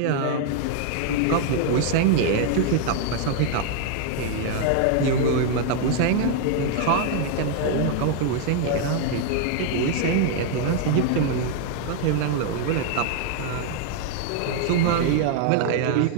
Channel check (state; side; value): different; both; correlation 0.00